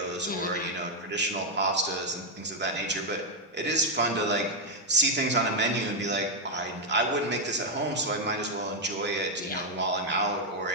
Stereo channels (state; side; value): normal; both; correlation 0.00